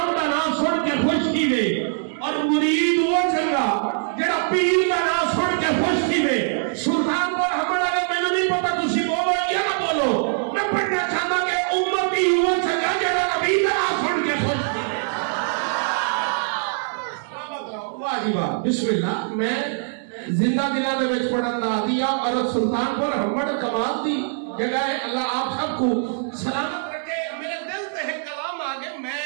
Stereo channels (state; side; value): silent; left; digital silence